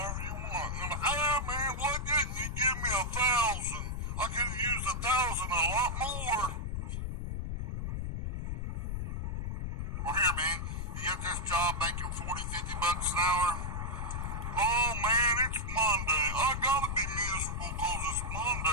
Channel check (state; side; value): noise; left; rumble, 3 dB below the sound